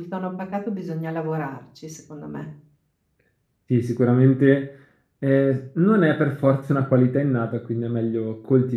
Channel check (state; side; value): identical; both; correlation 1.00